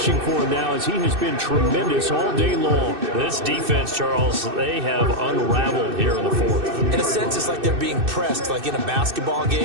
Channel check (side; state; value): left; late; 2.6 ms